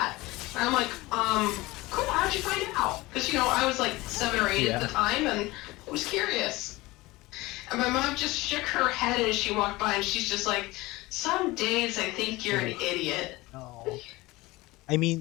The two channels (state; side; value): quieter; right; 20.6 dB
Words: And I'm like, cool, how'd you find out? Because, you know, I was like 7 or 8 at the time and I was curious. And my mom just shook her head as she walked by and she's just like, some days I think you're an idiot. No. I